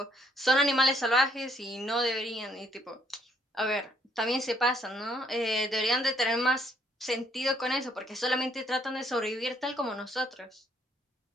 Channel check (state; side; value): normal; both; correlation 0.67